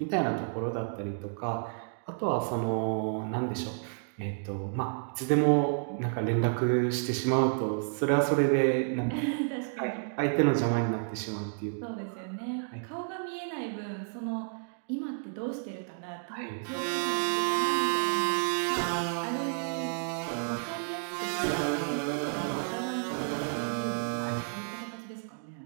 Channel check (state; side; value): silent; left; digital silence